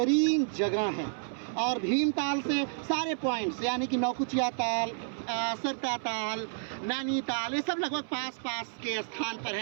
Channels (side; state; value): left; silent; 57 dB below the other